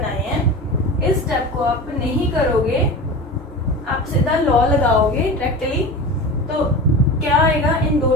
हैं. इस स्टेप को आप नहीं करोगे, आप सीधा लॉ लगाओगे डायरेक्टली, तो क्या आएगा? इन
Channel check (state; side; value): normal; both; correlation 0.30